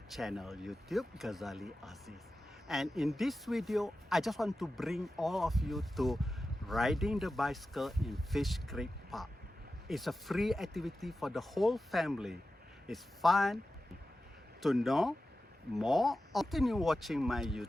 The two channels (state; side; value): normal; both; correlation 0.93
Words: channel, YouTube Ghazali Aziz. And in this video, I just want to bring all of you to riding the bicycle in Fish Creek Park. It's a free activity for the whole family. It's fun. To know more, continue watching my